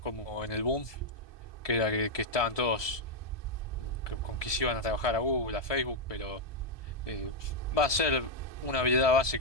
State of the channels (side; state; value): right; late; 1.7 ms